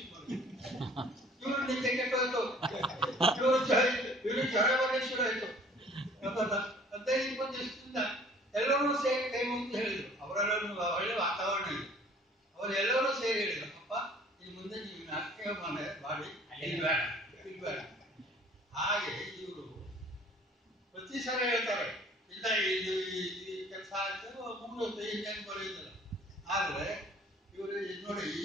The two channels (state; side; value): normal; both; correlation 0.52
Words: ಮಾಡಿದ್ರು. ಇವರು ನಿದ್ದೆ ಕೆಟ್ಟೋಯ್ತು, ಇವರು ಜ್ವರ ಬರಲಿ ಶುರು ಆಯ್ತು. 15-20 ದಿವಸದಿಂದ ಎಲ್ಲರೂ ಸೇರಿ ಕೈ ಮುಗಿದು ಹೇಳಿದ್ರು. ಅವರೆಲ್ಲರೂ ಒಳ್ಳೆ ವಾತಾವರಣ ಇದೆ, ಅವರೆಲ್ಲರೂ ಸೇರಿ ಹೇಳಿದ್ರು, ಅಪ್ಪ ಇನ್ನು ಮುಂದೆ ನೀವು ನಾಟಕ ಮಾಡಿ ಬೇಡ. ಹಾಗೆ ಇವರು ಪ್ರತಿ ಸಲ ಹೇಳ್ತಾರೆ, ಇಲ್ಲ ಇದು ಈ ಕೆಲಸ ಆಯ್ತು ಮುಗಿದೋಯ್ತು, ಇನ್ನೇನು ಬರೆಯುತ್ತಿಲ್ಲ. ಆದರೆ ಇವರು ನೋಡಿ,